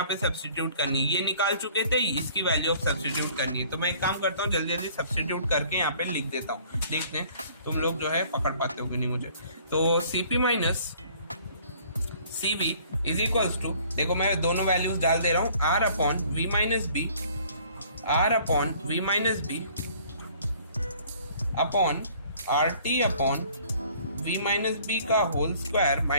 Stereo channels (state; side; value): inverted; both; correlation -0.55